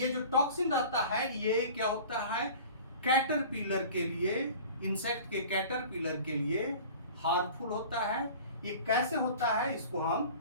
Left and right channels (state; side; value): inverted; both; correlation -0.42